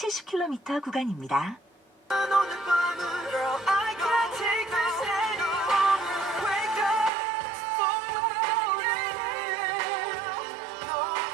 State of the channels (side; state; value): left; drops out; at 7.1 s